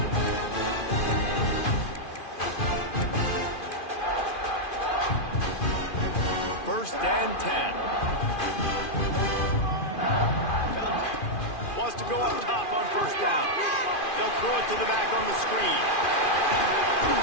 First and 10. Wants to go up top on 1st down. They'll throw it to the back on the screen.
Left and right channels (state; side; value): late; right; 2.5 ms